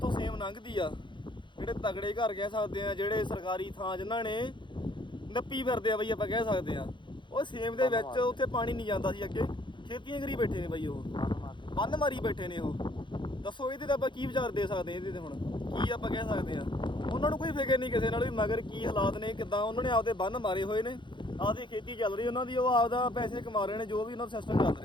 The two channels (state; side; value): late; right; 0.23 ms